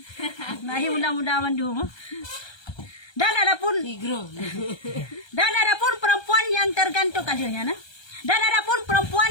Ngahi muda-muda mendung. Dan adapun perempuan yang tergantung kalinya nah. Dan adapun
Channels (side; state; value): right; late; 1.3 ms